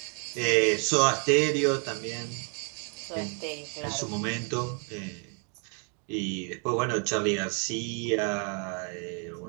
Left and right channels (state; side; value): quieter; left; 39.0 dB